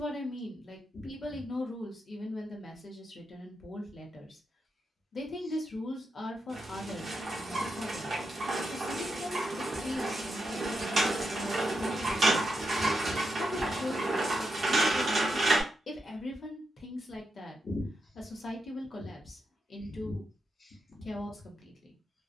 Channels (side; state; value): both; normal; correlation 0.85